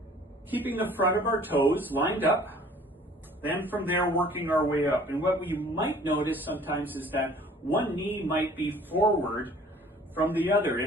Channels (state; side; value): normal; both; correlation 0.52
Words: keeping the front of our toes lined up, then from there working our way up. And what we might notice sometimes is that one knee might be forward from the other